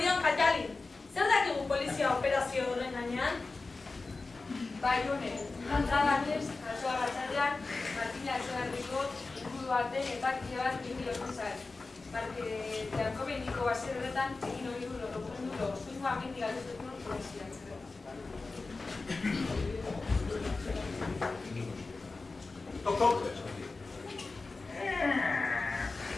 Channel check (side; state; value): right; quieter; 3.7 dB